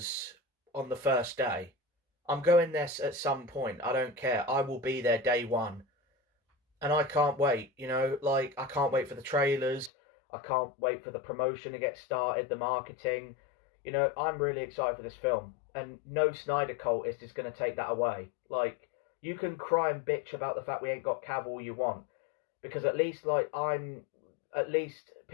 on the first day. I'm going there at some point. I don't care. I will be there day one. And I can't wait, you know, like, I can't wait for the trailers. I can't wait for the promotion to get started, the marketing. You know, I'm really excited for this film. And no Snyder cultist is going to take that away. Like, you can cry and bitch about the fact we ain't got Cavill you want. Because at least, at least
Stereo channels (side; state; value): right; drops out; at 9.9 s